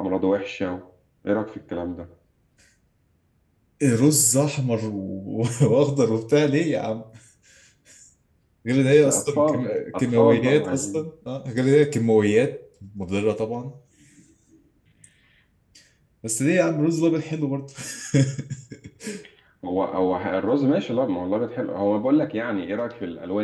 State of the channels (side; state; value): both; identical; correlation 1.00